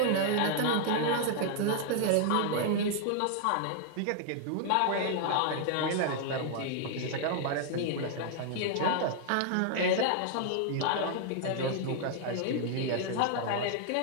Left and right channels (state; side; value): different; both; correlation 0.00